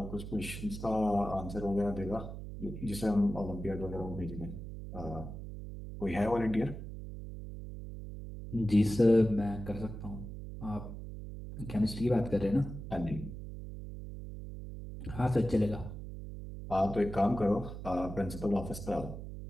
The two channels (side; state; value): right; noise; hum, 9 dB below the sound